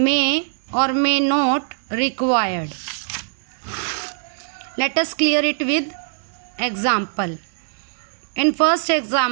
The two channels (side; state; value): left; silent; digital silence